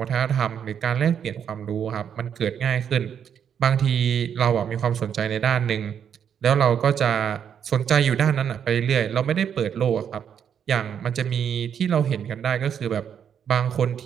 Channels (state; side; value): quieter; left; 8.3 dB